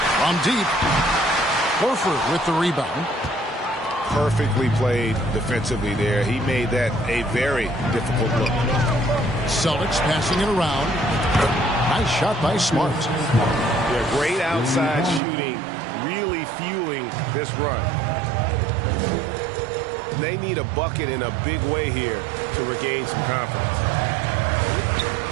From deep. Horford with the rebound. Perfectly played defensively there. He made that a very difficult look. Celtics passing it around. Nice shot by Smart. Yeah, great outside shooting, really fueling this run. They need a bucket in a big way here to regain some confidence.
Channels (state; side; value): drops out; left; at 15.2 s